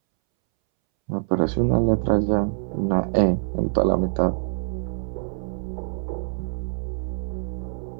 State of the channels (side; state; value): left; silent; 62 dB below the other